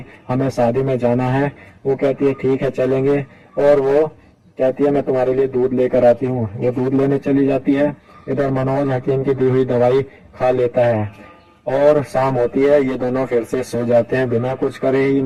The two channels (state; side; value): identical; both; correlation 1.00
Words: हमें शादी में जाना है। वो कहती है ठीक है चलेंगे, और वो कहती है मैं तुम्हारे लिए दूध लेकर आती हूँ। वो दूध लेने चली जाती है। इधर मनोज हकीम की दी हुई दवाई खा लेता है और शाम होती है। ये दोनों फिर से सो जाते हैं, बिना कुछ करे ही